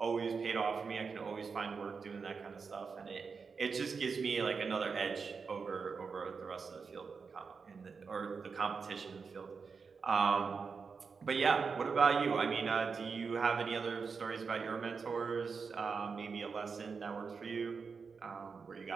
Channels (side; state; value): left; quieter; 5.3 dB